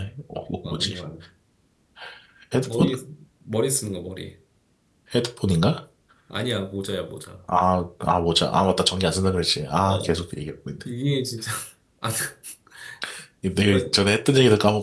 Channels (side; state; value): both; identical; correlation 1.00